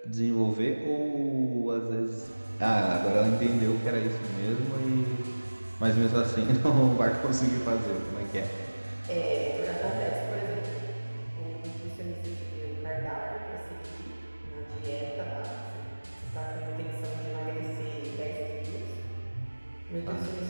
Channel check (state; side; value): inverted; both; correlation -1.00